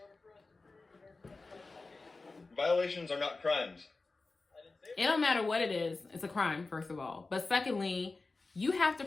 order for us to prove, in order for us to investigate. Violations are not crimes. I didn't say It don't matter what it is. It's a crime, first of all. But secondly, you have to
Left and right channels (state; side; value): quieter; right; 3.6 dB